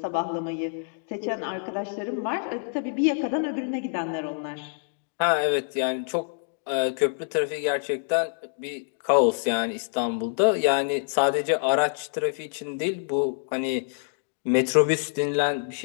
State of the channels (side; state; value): right; silent; digital silence